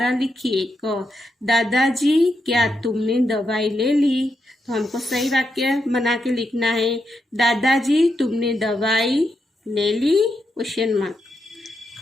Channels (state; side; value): normal; both; correlation 0.83